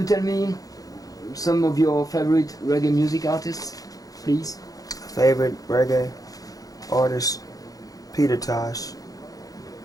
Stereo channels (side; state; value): right; late; 0.17 ms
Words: tell me some of your favorite reggae music artists, please? Favorite reggae artists: Peter Tosh,